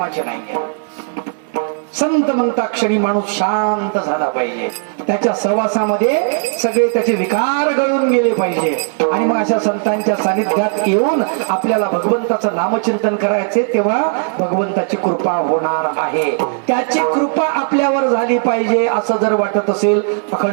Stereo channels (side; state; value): left; silent; digital silence